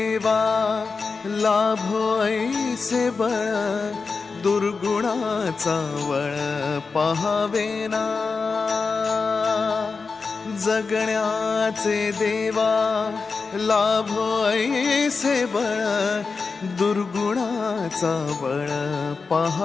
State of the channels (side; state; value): right; quieter; 4.6 dB